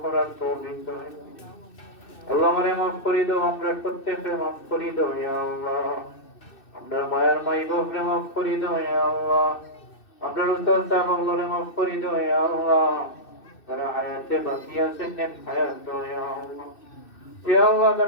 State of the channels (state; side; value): late; right; 2.6 ms